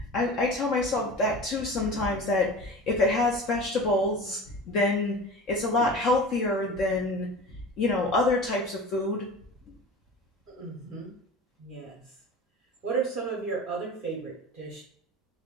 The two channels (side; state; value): both; normal; correlation 0.35